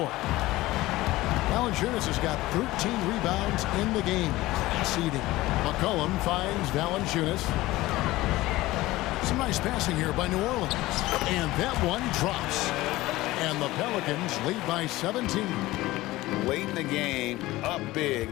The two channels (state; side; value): quieter; right; 18.1 dB